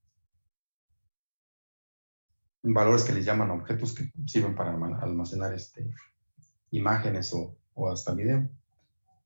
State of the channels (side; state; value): both; inverted; correlation -1.00